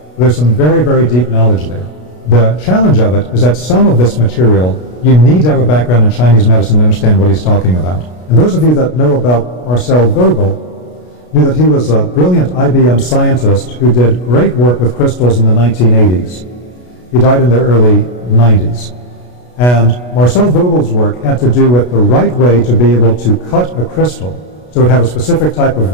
There's some very, very deep knowledge there. The challenge of it is that some of this material, you need to have a background in Chinese medicine to understand what he's talking about. And those of you that know about Marcel Vogel knew that he was a brilliant IBM scientist who did great work with crystals in the 1980s. He died in the early 90s. And Marcel Vogel's work had to do with the right way to be able to cut a crystal so it would have a specific type of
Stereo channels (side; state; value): right; late; 33 ms